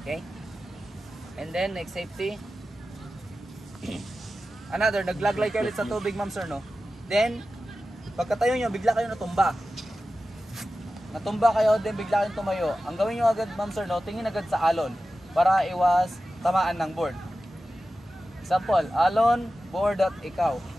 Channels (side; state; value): both; normal; correlation 0.94